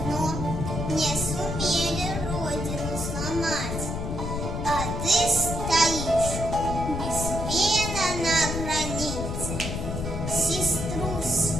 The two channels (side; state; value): left; noise; rumble, 4 dB below the sound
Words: но не сумели родину сломать. А ты стоишь без пена на границе, сестру